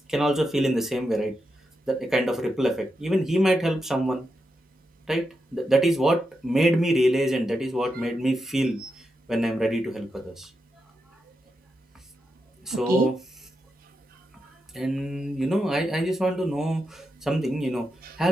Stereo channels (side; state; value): both; normal; correlation 0.86